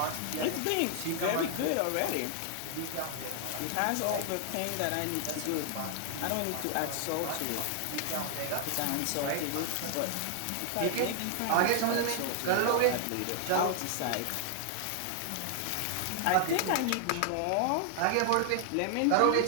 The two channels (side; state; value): both; different; correlation 0.00